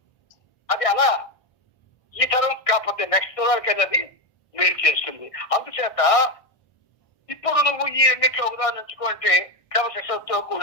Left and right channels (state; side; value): late; right; 1.6 ms